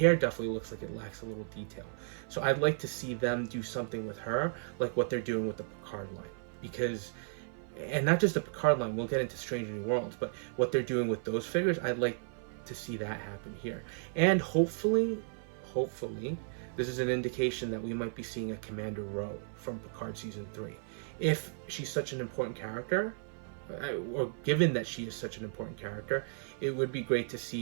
definitely looks like it lacks a little detail. So I'd like to see them do something with her, like what they're doing with the Picard line. Because, and not just the Picard line, we'll get into Strange New Worlds, but what they're doing with those figures, I'd like to see that happen here. And hopefully, this is an indication that we might be seeing a Commander Rowe from Picard Season 3. If she's such an important character, or given that she is such an important character, it would be great to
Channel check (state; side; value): silent; left; 55 dB below the other